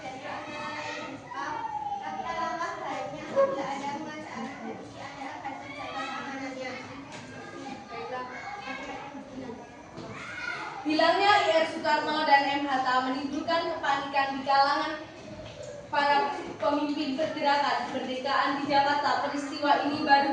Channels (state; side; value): identical; both; correlation 1.00